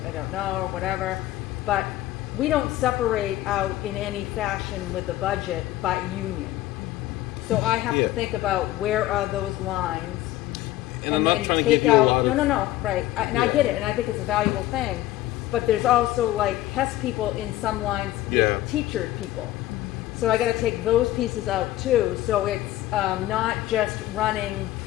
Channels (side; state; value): right; quieter; 15.3 dB